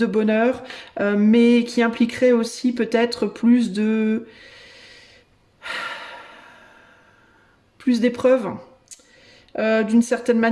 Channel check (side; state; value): both; identical; correlation 1.00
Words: bonheur, mais qui impliquerait aussi peut-être plus d'épreuves. D'une certaine